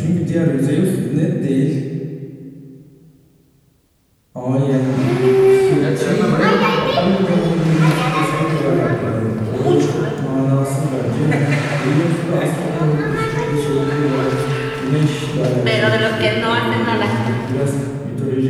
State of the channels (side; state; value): both; identical; correlation 1.00